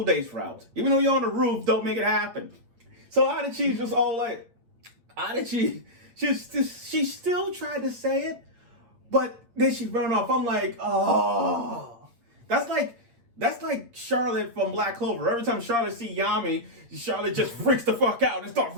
days route. Even though you're on the roof, don't make it happen. So Adachi's just all like, she still tried to say it, but then she ran off. I'm like, oh, that's like Charlotte from Black Clover. Every time Charlotte see Yami, Charlotte just freaks the fuck out and starts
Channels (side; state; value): left; late; 8.6 ms